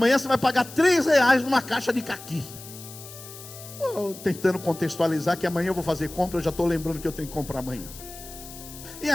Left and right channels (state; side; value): noise; left; hiss, 15 dB below the sound